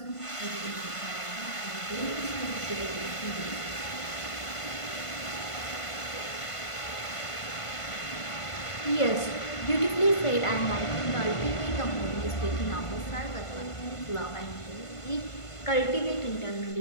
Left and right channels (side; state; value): right; late; 1.5 ms